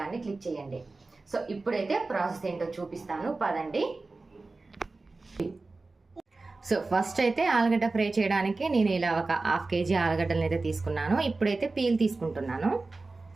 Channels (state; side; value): quieter; left; 3.5 dB